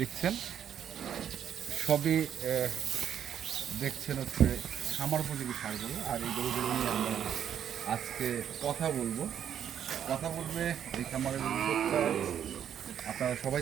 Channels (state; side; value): quieter; left; 9.3 dB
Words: দেখছেন সবই দেখছেন হচ্ছে খামার উপযোগী ষাঁড়গুলো, আর এই গরুগুলো নিয়ে আমরা আজকে কথা বলবে এই খামারের উদ্যোক্তা। আপনারা সবাই